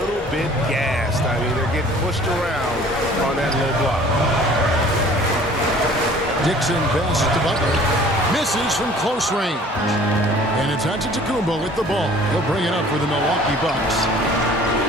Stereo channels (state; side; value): normal; both; correlation 0.51